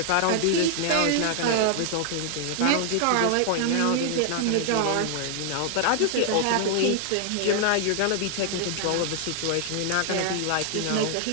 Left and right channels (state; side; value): different; both; correlation 0.00